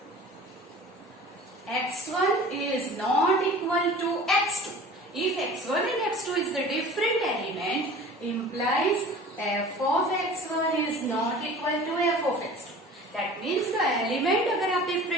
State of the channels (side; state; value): both; normal; correlation 0.42